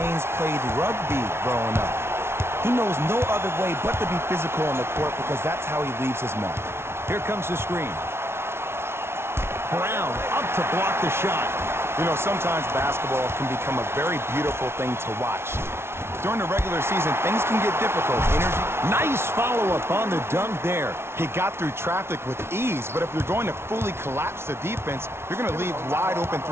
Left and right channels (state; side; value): late; left; 0.12 ms